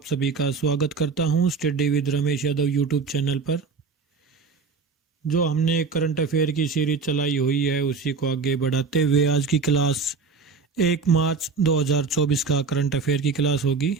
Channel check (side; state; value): left; quieter; 4.9 dB